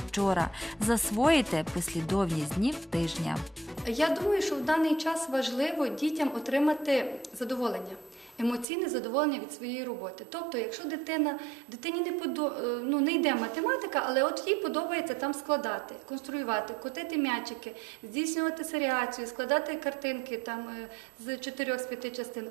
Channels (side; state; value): left; drops out; at 8.7 s